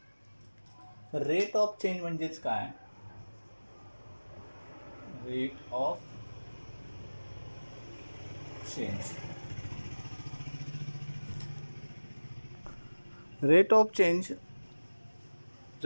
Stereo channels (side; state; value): both; inverted; correlation -1.00